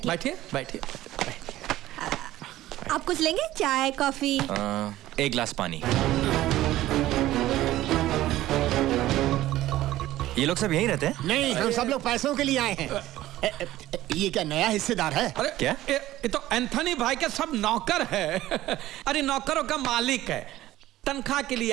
बैठिए बैठिए। आप कुछ लेंगे? चाय कॉफी? एक गिलास पानी। ये लोग सब यहीं रहते हैं? नहीं, हम सब लोग पैसों के लिए आए हैं। ये क्या नया हिस्सेदार है? अरे क्या? ये तो एंथनी भाई के सब नौकर है। अरे नौकरों का मालिक है। तनख्वाह के लिए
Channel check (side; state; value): left; quieter; 15.2 dB